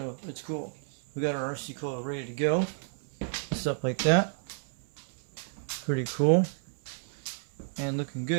it's cool. We got our RC coil ready to go. Stuff like that. Pretty cool. And looking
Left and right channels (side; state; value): left; silent; 57 dB below the other